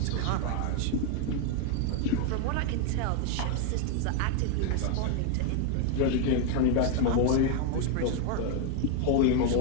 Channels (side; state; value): both; different; correlation 0.00